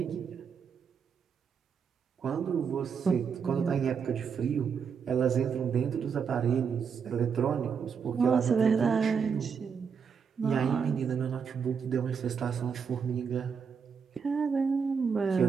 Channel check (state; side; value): quieter; left; 6.4 dB